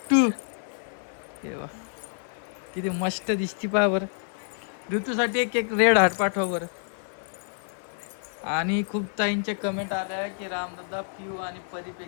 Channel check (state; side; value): silent; right; 59 dB below the other